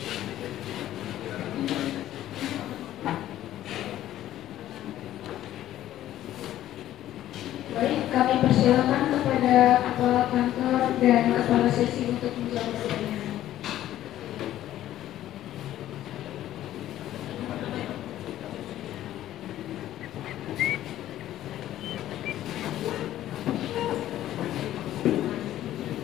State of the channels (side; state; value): right; quieter; 13.0 dB